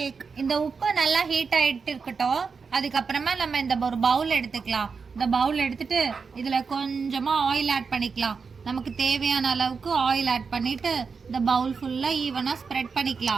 இந்த உப்பு நல்லா ஹீட் ஆகிட்டு இருக்கட்டும். அதுக்கப்புறமா நம்ம இந்த ஒரு பவுல் எடுத்துக்கலாம். இந்த பவுல் எடுத்துட்டு இதில் கொஞ்சமாக ஆயில் ஆட் பண்ணிக்கலாம். நமக்கு தேவையான அளவுக்கு ஆயில் ஆட் பண்ணிட்டு இந்த பவுல் ஃபுல்லாக ஈவனாக ஸ்ப்ரெட்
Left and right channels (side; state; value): left; quieter; 5.2 dB